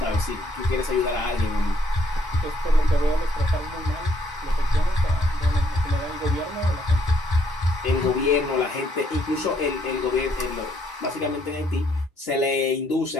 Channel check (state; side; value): normal; both; correlation 0.69